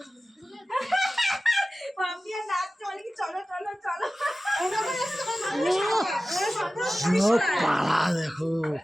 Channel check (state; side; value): normal; both; correlation 0.95